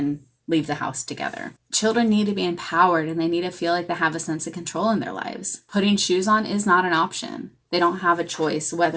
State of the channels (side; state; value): both; identical; correlation 1.00